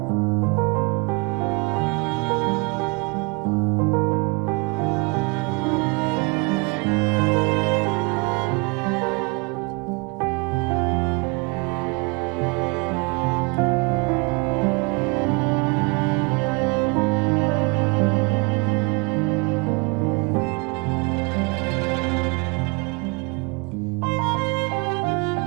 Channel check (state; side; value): quieter; left; 30.6 dB